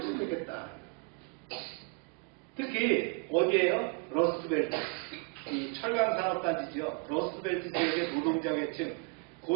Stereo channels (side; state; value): left; quieter; 34.2 dB